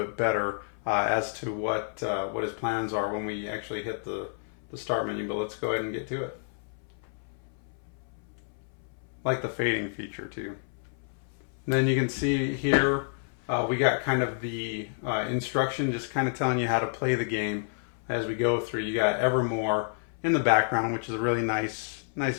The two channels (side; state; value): right; silent; 58 dB below the other